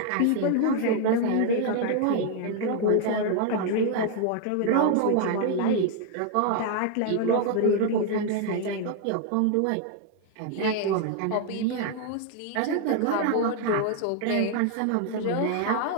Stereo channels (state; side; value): different; both; correlation 0.00